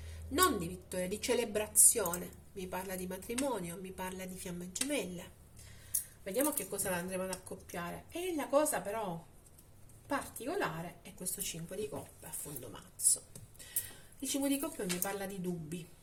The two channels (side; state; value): both; identical; correlation 1.00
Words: non di vittoria, di celebrazione, mi parla di matrimonio, mi parla di fiamme gemelle. Vediamo che cosa la andremo ad accoppiare. E la cosa però particolare è questo 5 di coppe a fondo mazzo. Il 5 di coppe mi parla di dubbi,